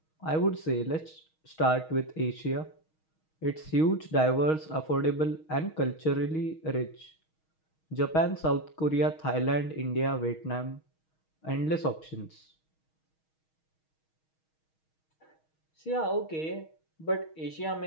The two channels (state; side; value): late; right; 6.3 ms